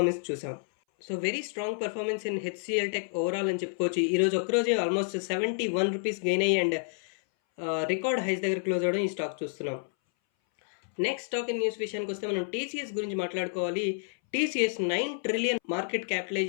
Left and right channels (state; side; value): silent; right; 58 dB below the other